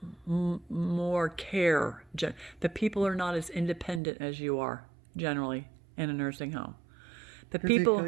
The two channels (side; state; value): left; drops out; at 4.0 s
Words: more care. The people are not as independent as you are generally in a nursing home. The people